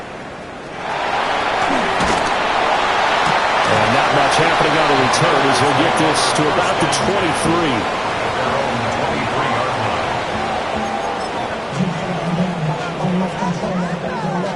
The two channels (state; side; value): identical; both; correlation 1.00